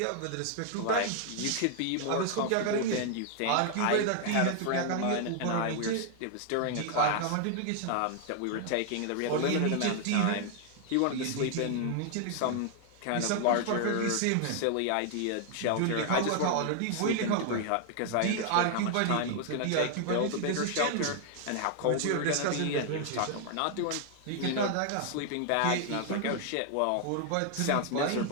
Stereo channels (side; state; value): both; different; correlation 0.00